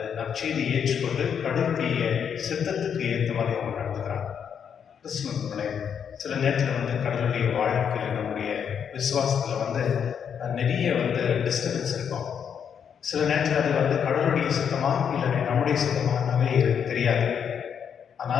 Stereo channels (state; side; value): quieter; right; 7.7 dB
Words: நற்செய்தியை ஏற்றுக்கொண்டு கடவுளுடைய சித்தத்துக்கு ஏற்ற மாதிரி அவங்க நடந்துக்கிறாங்க. கிறிஸ்துவனுடைய சில நேரத்தில் வந்து கடவுளுடைய வாழ்க்கையில் நம்முடைய விசுவாசத்தில் வந்து நிறைய வந்து டிஸ்டர்பன்ஸ் இருக்கும். சில நேரத்தில் அது வந்து கடவுளுடைய சித்தமாக இல்லை நம்முடைய சித்தமாகவே தெரியாது.